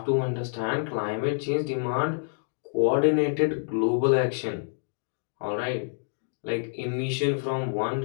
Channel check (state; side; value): silent; right; digital silence